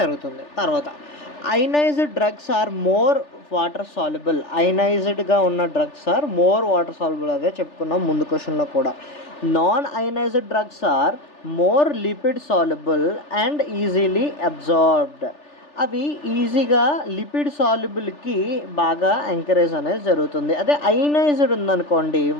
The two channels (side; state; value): right; late; 3.4 ms